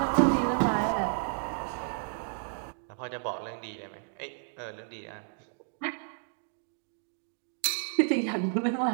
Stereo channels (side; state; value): left; silent; digital silence